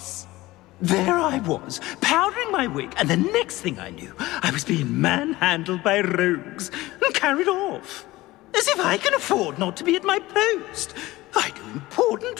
There I was, powdering my wig, and the next thing I knew, I was being manhandled by rogues and carried off. As if I can afford not to be at my post. I do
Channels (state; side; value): quieter; right; 18.6 dB